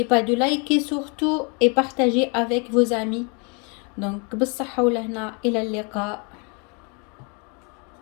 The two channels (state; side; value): quieter; right; 34.1 dB